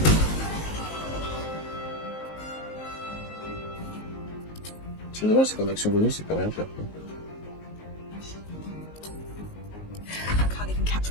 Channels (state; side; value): late; right; 19 ms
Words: C'est dommage, c'est comme action bonus, il peut rien faire, quoi.